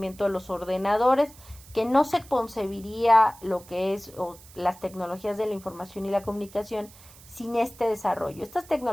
de los ordenadores, que no se concebiría lo que es las tecnologías de la información y la comunicación sin este desarrollo. Estas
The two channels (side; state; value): right; noise; hiss, 22 dB below the sound